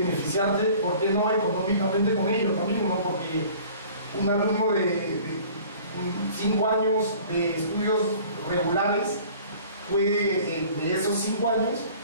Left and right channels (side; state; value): both; inverted; correlation -0.48